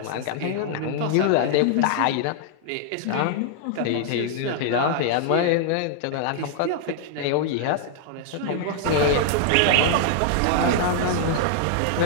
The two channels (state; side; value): different; both; correlation 0.00